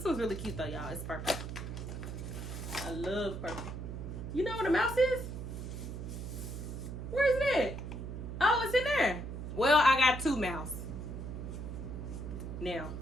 one's really cute though, y'all. It's purple. I love purple. You know what a mouse is? Where is it at? Oh, it's in there. Well, I got 2 mouse now,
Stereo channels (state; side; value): noise; right; hum, 7 dB below the sound